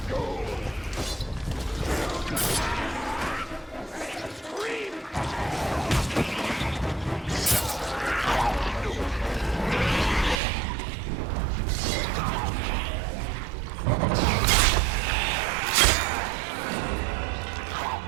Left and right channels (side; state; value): left; drops out; at 10.4 s